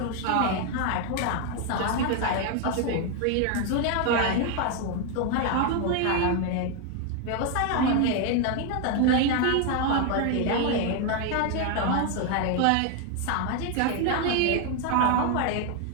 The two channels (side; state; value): both; different; correlation 0.01